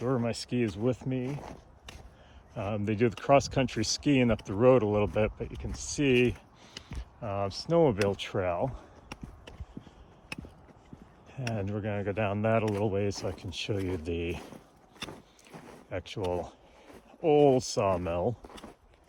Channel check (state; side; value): identical; both; correlation 1.00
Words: or my skis with me. They do the cross-country skiing up the road a little bit, but you can see snowmobile trail. And we're going to go down that a little ways so I can show you the actual old sawmill.